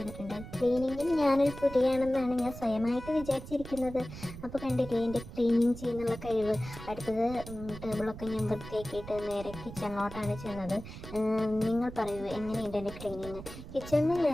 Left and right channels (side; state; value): right; noise; rumble, 12 dB below the sound